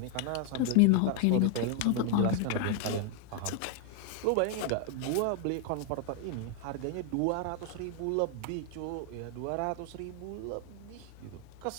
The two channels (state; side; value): different; both; correlation 0.00